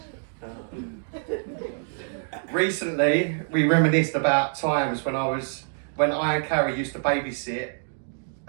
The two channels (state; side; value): silent; left; digital silence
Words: Recently, we reminisced about times when I and Carrie used to babysit